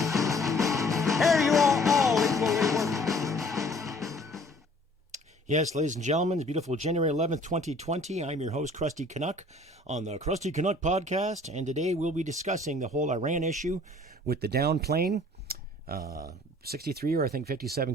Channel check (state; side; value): normal; both; correlation 0.54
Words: Here you are all equally worthy. Yes, ladies and gentlemen, it's beautiful January 11th, 2020. I'm your host, Krusty Canuck, on the Krusty Canuck podcast, and today we'll be discussing the whole Iran issue with the down plane. 63 or I think 57